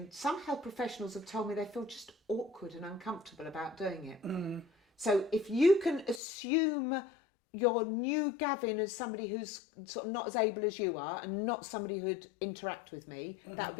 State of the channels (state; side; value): drops out; right; at 6.2 s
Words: some health professionals have told me they feel just awkward and uncomfortable about doing it. So if you can assume your new Gavin as somebody who's sort of not as able as you are and not somebody who'd interact with me, that would